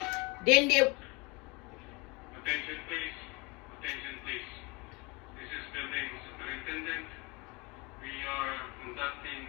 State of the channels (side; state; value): right; quieter; 26.9 dB